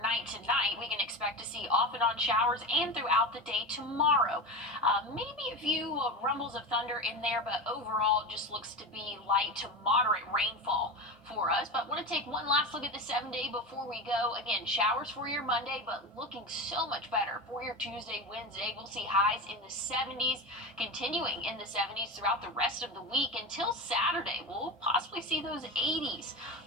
tonight. We can expect to see off and on showers and throughout the day tomorrow. Maybe a few rumbles of thunder in there, but overall it just looks to be light to moderate rainfall for us. But want to take one last look at the 7-day before we go. Again, showers for your Monday, but looking so much better for your Tuesday, Wednesday. We'll see highs in the 70s, continuing in the 70s throughout the rest of the week until Saturday. We'll possibly see those 80s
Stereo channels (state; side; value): normal; both; correlation 0.23